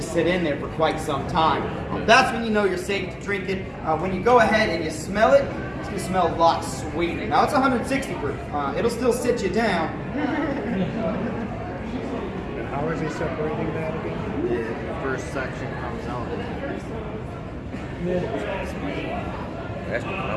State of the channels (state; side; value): identical; both; correlation 1.00